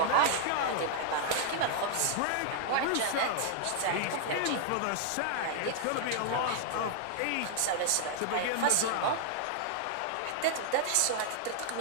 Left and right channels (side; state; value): both; different; correlation -0.01